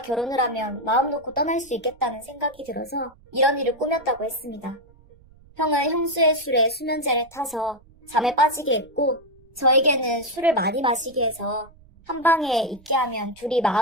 결혼을 하면 마음 놓고 떠날 수 있겠다는 생각이 들어서 이런 일을 꾸몄다고 했습니다. 형은 형수의 술에 수면제를 타서 잠에 빠지게 했고 저에게는 술을 많이 마시게 해서 한 방에 있게 하면 둘이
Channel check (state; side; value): noise; right; rumble, 27 dB below the sound